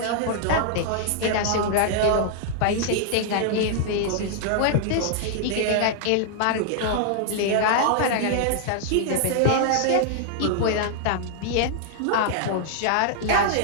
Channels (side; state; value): both; different; correlation -0.01